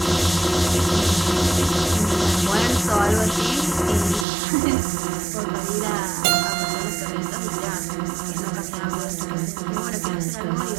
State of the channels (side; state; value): left; drops out; at 4.2 s